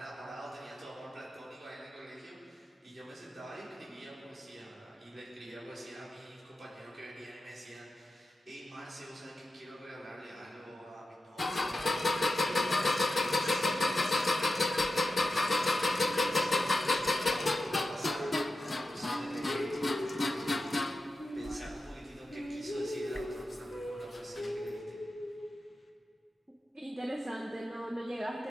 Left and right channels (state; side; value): normal; both; correlation 0.91